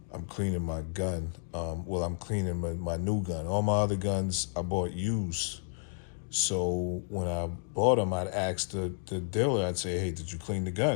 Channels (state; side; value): silent; right; digital silence